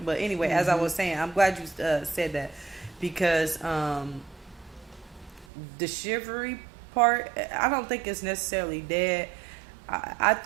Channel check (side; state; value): left; drops out; at 5.5 s